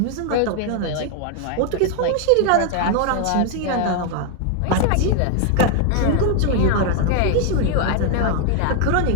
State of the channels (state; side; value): different; both; correlation 0.00